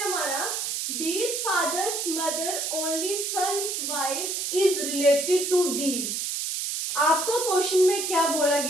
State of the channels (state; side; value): noise; right; hiss, 2 dB below the sound